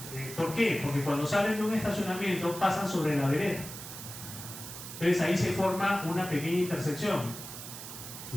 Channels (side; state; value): right; noise; hiss, 11 dB below the sound